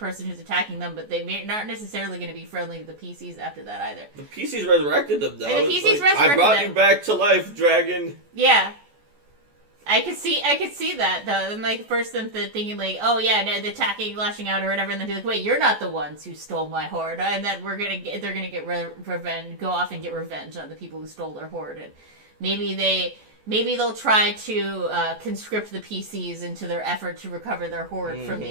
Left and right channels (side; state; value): left; late; 14 ms